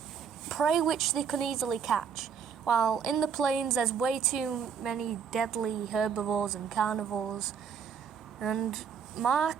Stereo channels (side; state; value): left; quieter; 7.0 dB